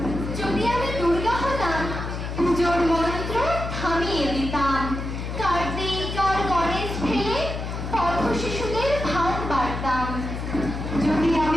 যদি আমি দুর্গা হতাম, পুজোর মন্ত্র থামিয়ে দিতাম, কার্তিক আর গণেশ ফেলে পথ শিশুদের ভাত বাড়তাম। যদি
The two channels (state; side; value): noise; left; hum, 5 dB below the sound